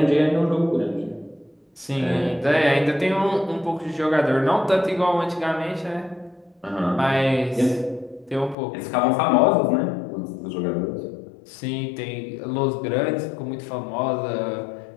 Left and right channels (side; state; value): right; drops out; at 8.6 s